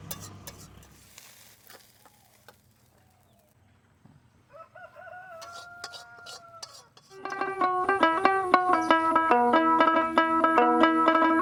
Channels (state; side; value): identical; both; correlation 1.00